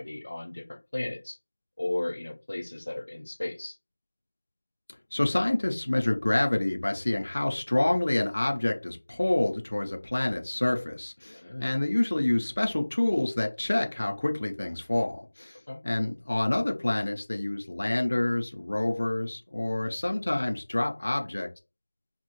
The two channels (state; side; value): inverted; both; correlation -1.00